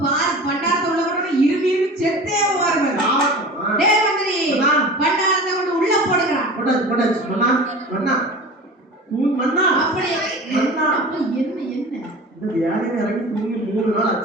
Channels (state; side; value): normal; both; correlation 0.36